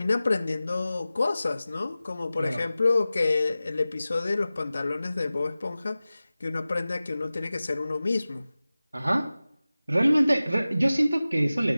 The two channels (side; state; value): both; inverted; correlation -0.96